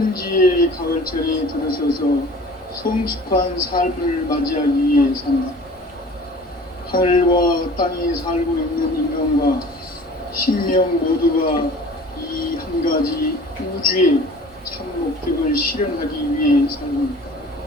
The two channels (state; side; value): normal; both; correlation 0.45